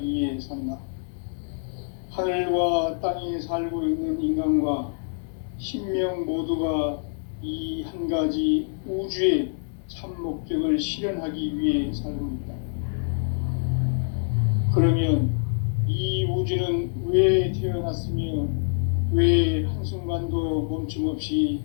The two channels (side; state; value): right; silent; digital silence